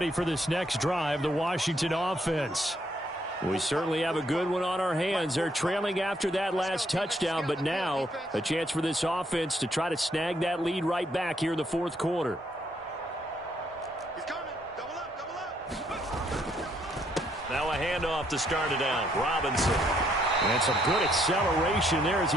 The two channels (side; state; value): both; normal; correlation 0.71